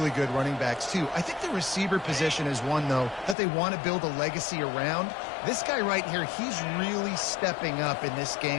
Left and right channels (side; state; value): right; drops out; at 3.4 s